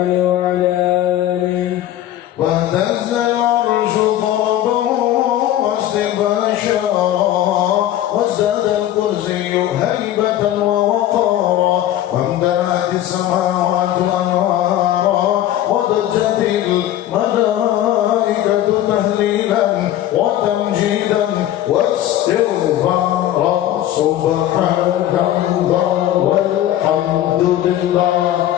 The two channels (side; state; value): right; quieter; 12.6 dB